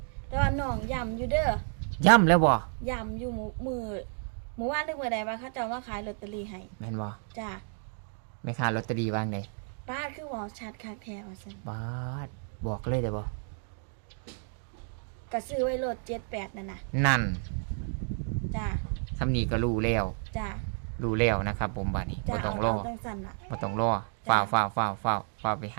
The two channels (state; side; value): silent; left; 57 dB below the other